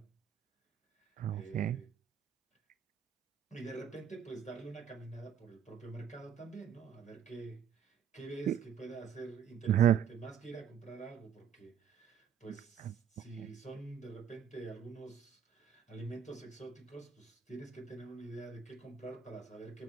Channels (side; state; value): left; quieter; 8.4 dB